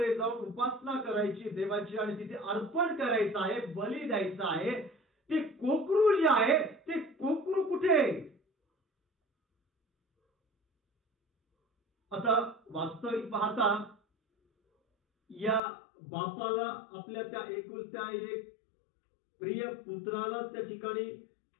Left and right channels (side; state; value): right; drops out; at 15.6 s